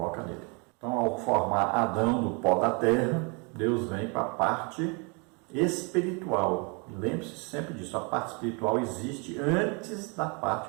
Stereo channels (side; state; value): left; quieter; 33.0 dB